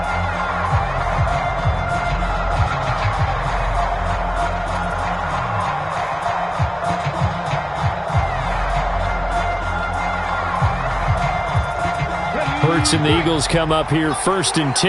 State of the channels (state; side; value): identical; both; correlation 1.00